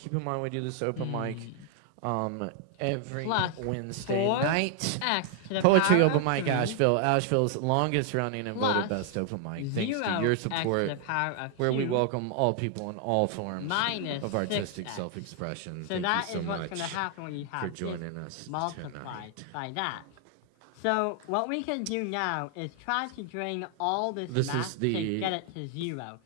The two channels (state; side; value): different; both; correlation 0.00